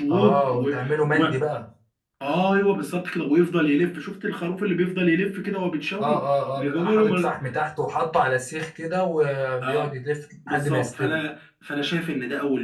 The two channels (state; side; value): identical; both; correlation 1.00